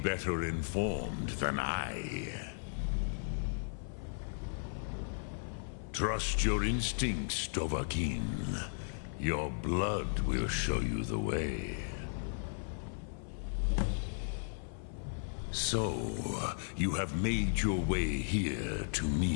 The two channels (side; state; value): right; silent; 54 dB below the other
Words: informed than I. Trust your instincts, Dovahkiin. Your blood will show you the way. So, you have made your way here to